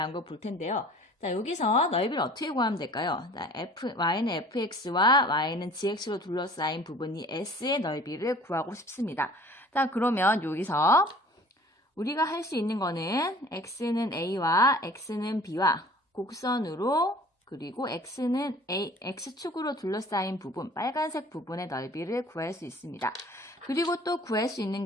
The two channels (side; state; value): both; normal; correlation 0.48